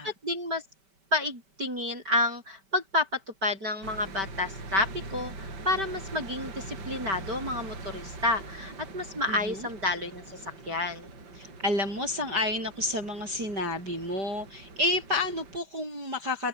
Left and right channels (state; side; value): late; left; 5.2 ms